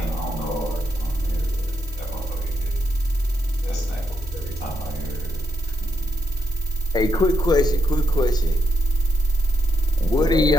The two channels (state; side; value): normal; both; correlation 0.80